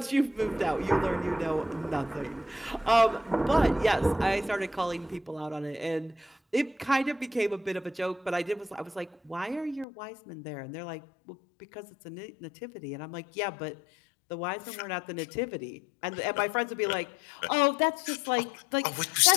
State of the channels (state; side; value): drops out; right; at 9.9 s